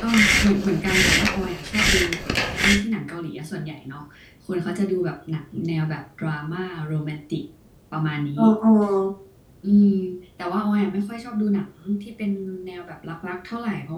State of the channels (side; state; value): both; identical; correlation 1.00